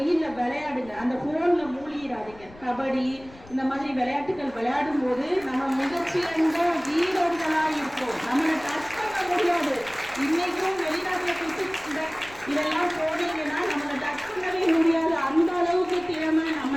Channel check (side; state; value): left; noise; rumble, 22 dB below the sound